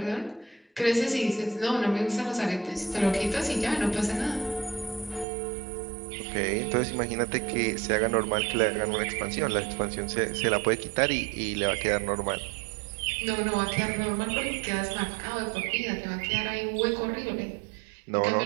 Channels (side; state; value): left; drops out; at 5.2 s